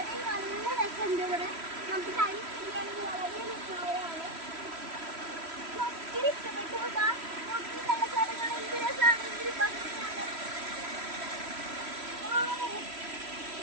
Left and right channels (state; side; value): late; left; 3.1 ms